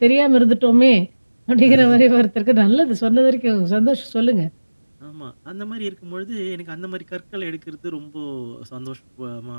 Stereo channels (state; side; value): inverted; both; correlation -1.00